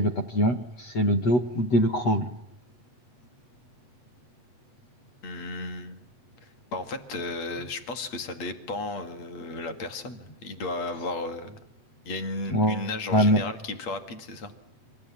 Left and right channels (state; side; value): late; right; 8.4 ms